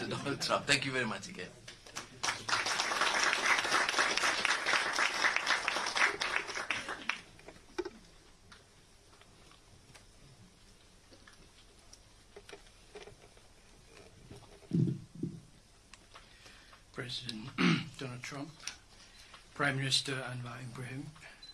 Donald Trump. Thank you very much again. President Donald Trump, Prime Minister Anwar Ibrahim,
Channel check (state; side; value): identical; both; correlation 1.00